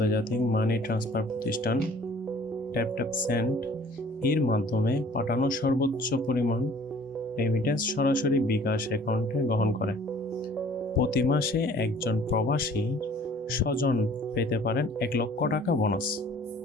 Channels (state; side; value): normal; both; correlation 0.52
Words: মানি ট্রান্সফার প্রতিষ্ঠান ট্যাপট্যাপসেন্ড এর মাধ্যমে পাঠানো সর্বোচ্চ পরিমাণ রেমিটেন্স সরাসরি বিকাশ অ্যাকাউন্টে গ্রহণ করে। প্রতি মাসে একজন প্রবাসী স্বজন পেতে পারেন 1 লক্ষ টাকা বোনাস।